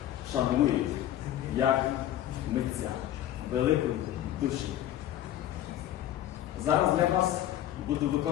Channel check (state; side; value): quieter; right; 12.4 dB